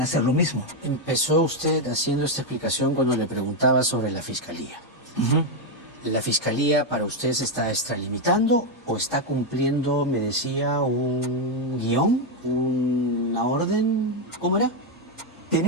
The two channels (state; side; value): normal; both; correlation 0.03